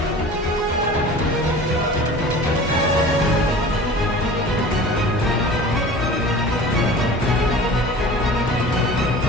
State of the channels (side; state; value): both; normal; correlation 0.40